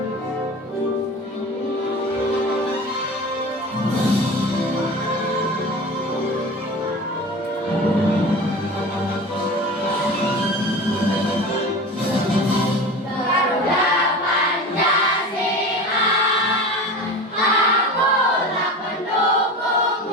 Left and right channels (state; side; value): normal; both; correlation 0.32